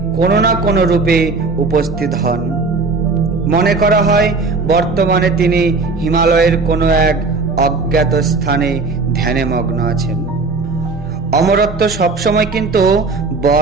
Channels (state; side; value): quieter; left; 4.0 dB